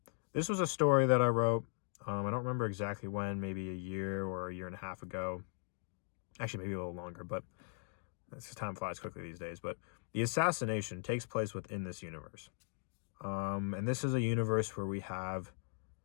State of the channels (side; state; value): right; silent; digital silence